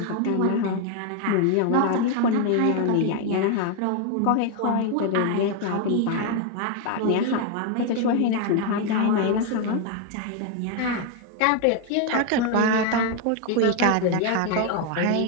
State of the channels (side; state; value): both; different; correlation 0.01